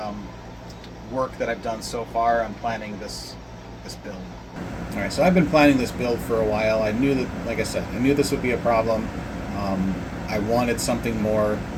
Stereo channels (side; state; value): both; identical; correlation 1.00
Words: work that I've done so far on planning this build. All right, so I've been planning this build for a while. I knew that, like I said, I knew this would be a problem. I wanted something more